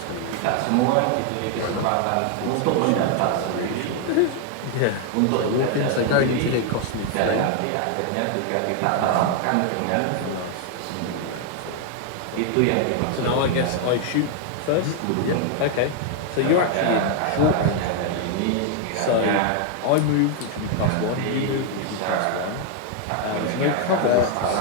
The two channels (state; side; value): different; both; correlation 0.00